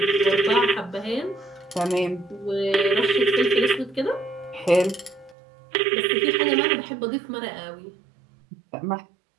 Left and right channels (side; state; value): left; drops out; at 5.4 s